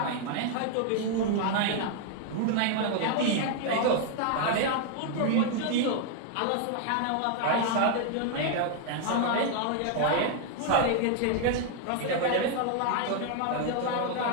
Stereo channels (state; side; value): different; both; correlation 0.00